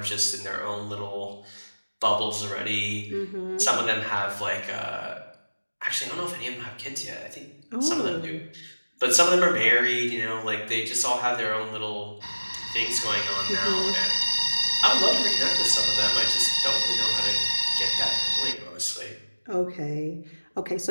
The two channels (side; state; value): both; inverted; correlation -1.00